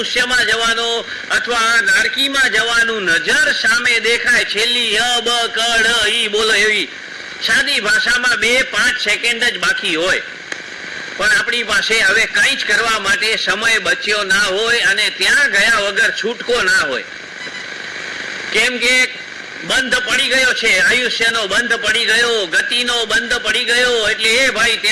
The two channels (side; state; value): both; identical; correlation 1.00